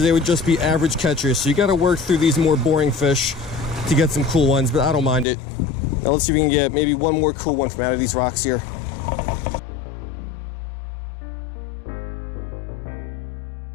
they would just be average catches. So you got to work through these more boring fish to get some cool ones, but I don't mind it. Now let's see if we can get maybe one more cool one from out of these rocks here.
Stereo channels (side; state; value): right; drops out; at 5.2 s